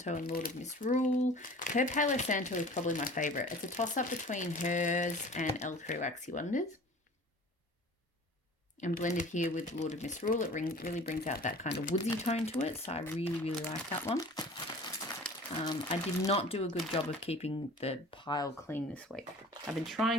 and Lord of Misrule. Her Palo Santo is probably my favourite. It's a toss-up between hers and L3 Waxy Wonders. And blended here with Lord of Misrule, it really brings out that kind of woodsy tone to it. So I really, really like that one. I did not do a good job of keeping the pile clean this week. I've been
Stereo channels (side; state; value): both; normal; correlation 0.44